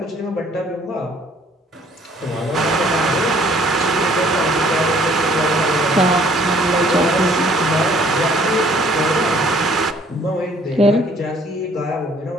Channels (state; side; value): normal; both; correlation 0.59